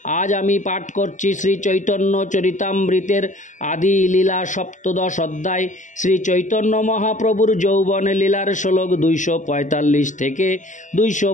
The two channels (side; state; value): right; late; 0.36 ms